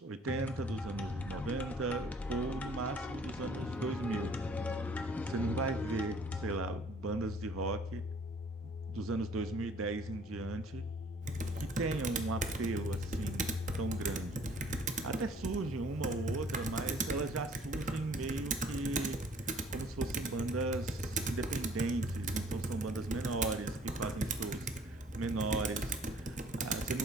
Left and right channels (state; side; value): normal; both; correlation 0.55